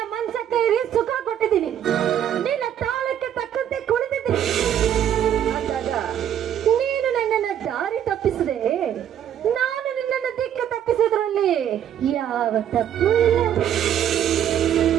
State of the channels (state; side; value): quieter; left; 10.0 dB